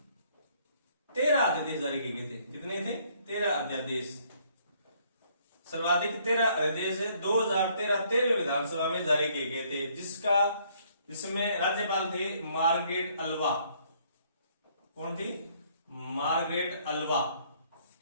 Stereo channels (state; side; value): inverted; both; correlation -0.65